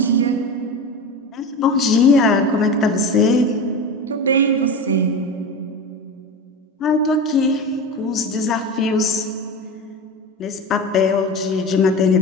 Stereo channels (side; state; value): both; normal; correlation 0.26